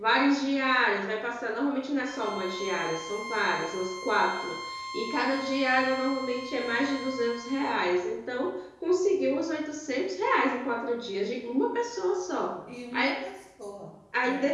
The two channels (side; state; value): both; identical; correlation 1.00